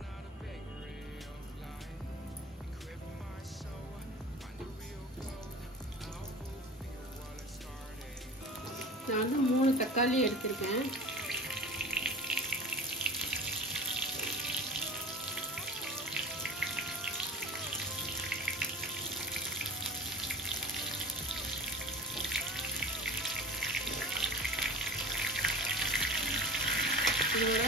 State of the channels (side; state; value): both; normal; correlation 0.37